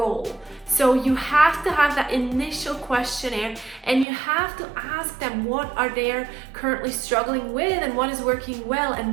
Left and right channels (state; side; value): drops out; left; at 4.0 s